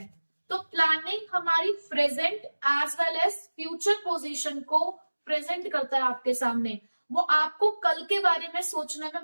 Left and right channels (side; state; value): both; inverted; correlation -1.00